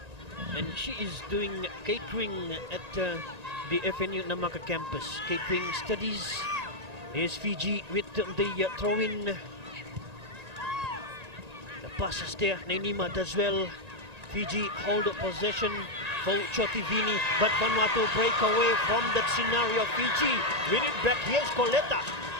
And she is doing catering at the FNU Namaka campus, catering studies. Here's Fiji with the throw-in. The passes there, Nenima does well. Fiji hold possession for Chotivini, but Vanuatu break away from that scenario. Fiji win it back. Here's Coletta,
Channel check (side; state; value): left; late; 1.8 ms